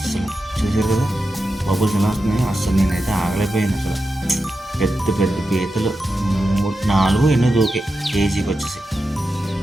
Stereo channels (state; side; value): normal; both; correlation 0.90